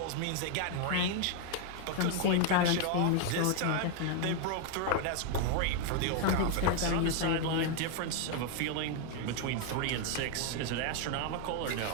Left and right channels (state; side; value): different; both; correlation 0.01